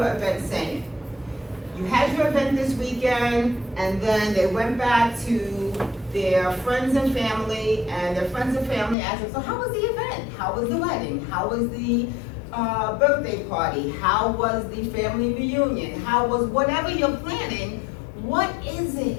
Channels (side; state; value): right; drops out; at 9.0 s